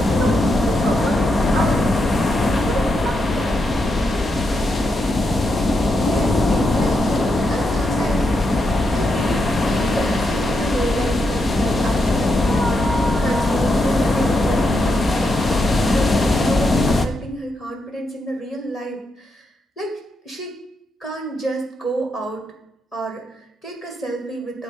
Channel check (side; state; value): both; normal; correlation 0.83